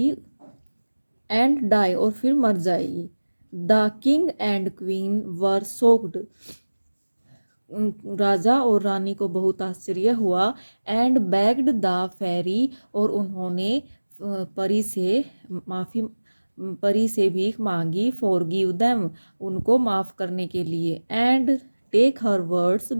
एंड डाई, और फिर मर जाएगी. The king and queen were soaked, राजा और रानी को बहुत आश्चर्य हुआ. एंड बेग्ड द फेरी, और उन्होंने परी से माफ़ी परी से भीख मांगी. फॉरगिव देम, उनको माफ़ करने के लिए. And take her words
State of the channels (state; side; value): inverted; both; correlation -1.00